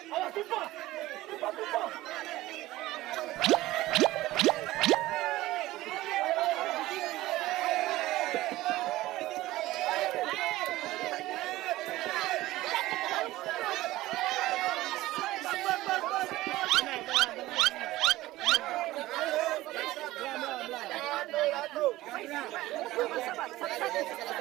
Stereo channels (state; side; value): quieter; left; 17.1 dB